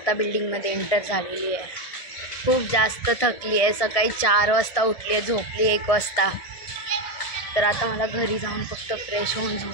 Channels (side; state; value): right; late; 1.7 ms